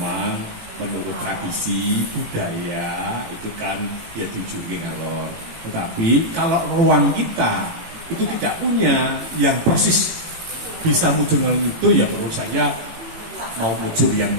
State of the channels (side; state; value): left; late; 18 ms